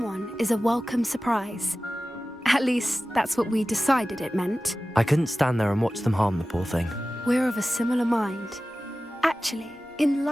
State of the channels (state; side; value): normal; both; correlation 0.96